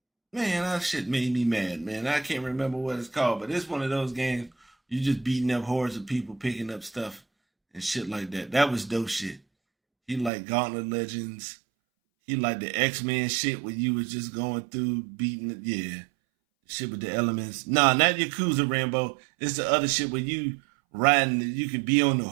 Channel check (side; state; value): left; drops out; at 10.3 s